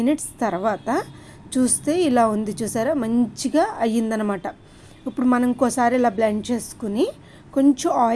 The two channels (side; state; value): both; identical; correlation 1.00